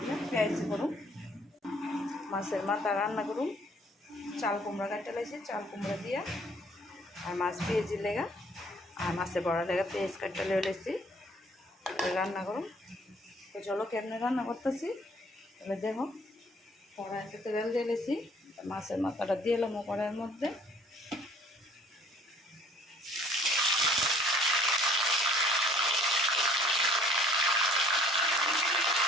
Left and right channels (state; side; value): normal; both; correlation 0.56